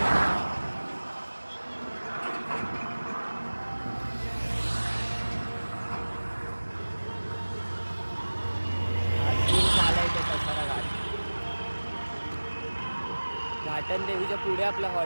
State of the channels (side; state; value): both; inverted; correlation -1.00